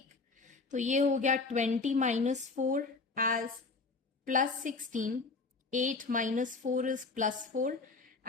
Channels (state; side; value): quieter; right; 4.0 dB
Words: तो ये हो गया 20 - 4 as +16. 8 - 4 is +4